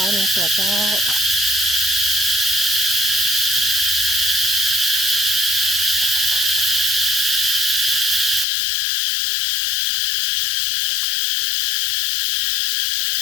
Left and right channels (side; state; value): right; drops out; at 8.5 s